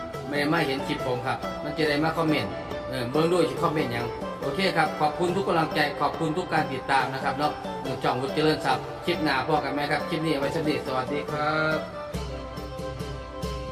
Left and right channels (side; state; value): both; identical; correlation 1.00